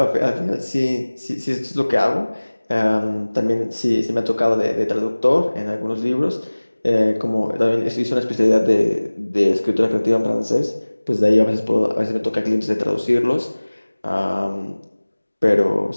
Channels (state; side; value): inverted; both; correlation -1.00